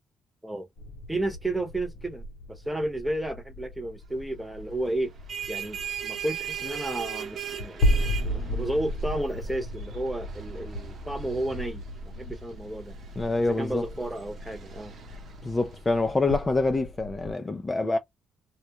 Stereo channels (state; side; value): normal; both; correlation 0.73